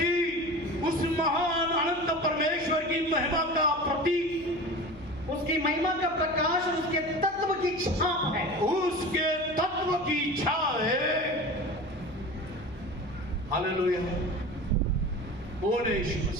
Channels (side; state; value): left; noise; hum, 21 dB below the sound